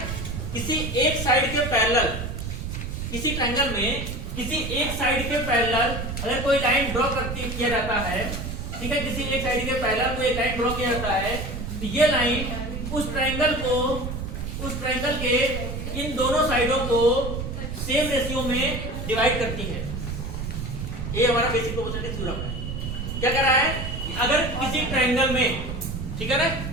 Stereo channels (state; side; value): noise; right; rumble, 5 dB below the sound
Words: किसी एक साइड के पैरेलल, किसी ट्रायंगल में किसी एक साइड के पैरेलल अगर कोई लाइन ड्रॉ किया जाता है, ठीक है, किसी एक साइड के पैरेलल कोई एक लाइन ड्रॉ किया जाता है, तो ये लाइन उस ट्रायंगल के इन दोनों साइडों को सेम रेशियो में डिवाइड करती है। ये हमारा बेसिक प्रोपोर्शनैलिटी थ्योरम है। क्या कह रहा है, अगर किसी ट्रायंगल में, ठीक है ना,